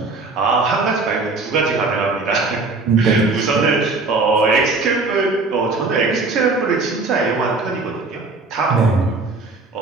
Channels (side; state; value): left; quieter; 3.7 dB